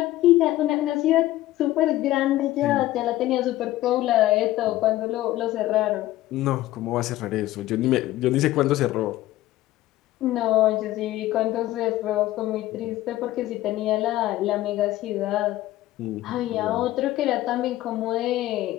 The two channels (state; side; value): quieter; right; 15.6 dB